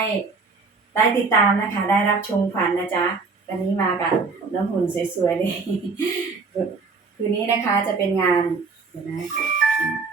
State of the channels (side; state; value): left; quieter; 4.4 dB